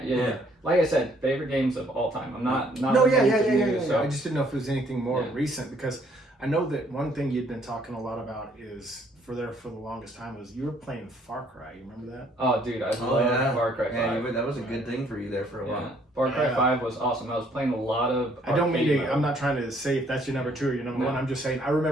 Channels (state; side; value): normal; both; correlation 0.64